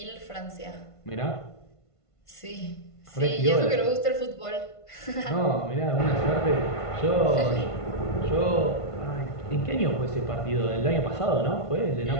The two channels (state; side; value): late; right; 1.5 ms